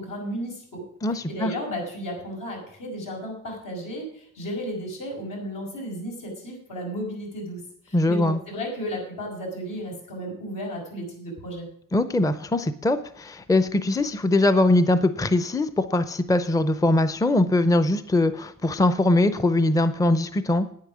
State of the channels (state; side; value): normal; both; correlation 0.74